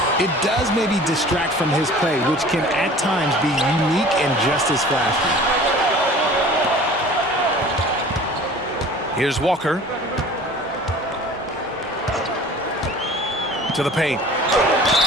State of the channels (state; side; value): normal; both; correlation 0.45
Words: it does maybe distract from his play, which can at times be unique and just as flashy. Here's Walker. To the paint.